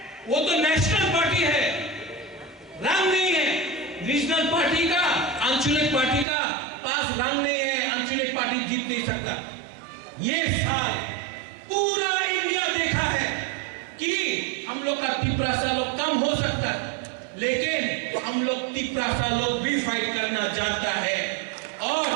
वो तो नेशनल पार्टी है, रंग नहीं है। रीजनल पार्टी का, आंचलिक पार्टी का पास रंग नहीं है, आंचलिक पार्टी जीत नहीं सकता। ये साल पूरा इंडिया देखा है कि हम लोग का तिप्रासा लोग कम हो सकता है, लेकिन हम लोग तिप्रासा लोग भी फाइट करना जानता है। और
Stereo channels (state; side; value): drops out; left; at 6.2 s